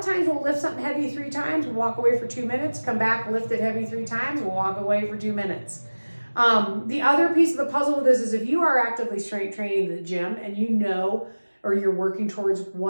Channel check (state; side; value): inverted; both; correlation -1.00